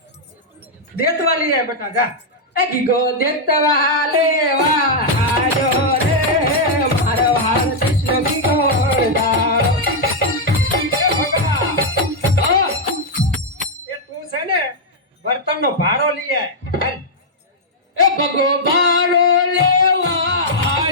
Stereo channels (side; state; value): both; normal; correlation -0.03